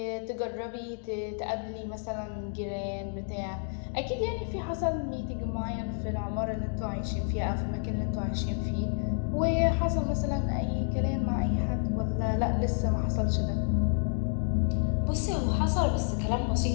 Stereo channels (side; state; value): right; silent; 58 dB below the other